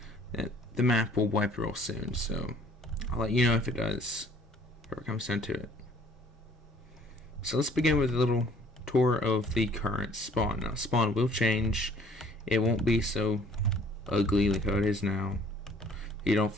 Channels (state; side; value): normal; both; correlation 0.57